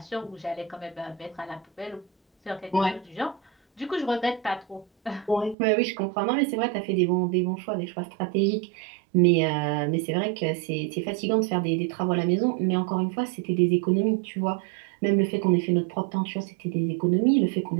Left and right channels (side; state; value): left; drops out; at 5.6 s